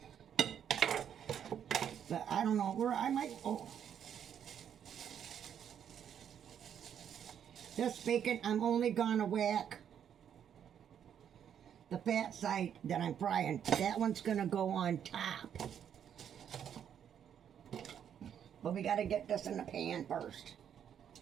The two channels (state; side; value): quieter; left; 8.8 dB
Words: But I don't know where I might. Oh, this bacon, I'm only gonna whack the fat side that I'm frying. That one's gonna go on top. But we gotta get this in the pan first.